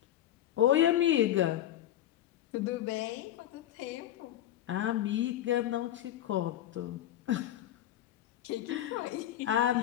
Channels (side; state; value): right; quieter; 12.6 dB